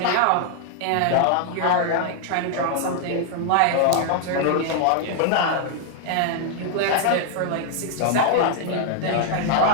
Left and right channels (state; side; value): different; both; correlation 0.00